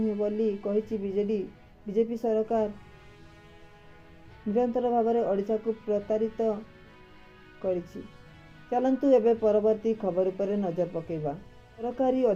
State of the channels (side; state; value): both; identical; correlation 1.00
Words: बोली कहिछि बीजेडी। बीजेपी सरकार निरंतर भाव में ओडिशा को प्रतारित करिछि। चलंतु एबे परवर्ती खबर उपरे नजर पकेबा। सरकारी